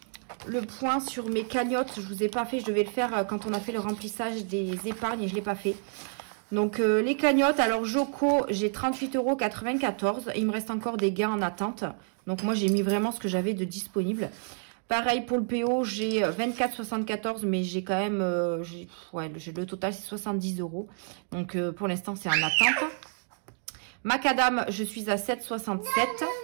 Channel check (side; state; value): left; silent; 59 dB below the other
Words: point sur mes cagnottes. Je vous ai pas fait, je devais le faire quand on a fait le remplissage des épargnes et je l'ai pas fait. Donc les cagnottes, alors Joko, j'ai 38,94 €. Il me reste encore des gains en attente. Donc moi j'ai mis vraiment ce que j'avais de disponible. Pareil pour le PO, j'ai 24,74 €, mais j'ai quand même, le total c'est 70 €. Donc pour l'instant c'est en attente. Macadam, je suis à 7,67 €.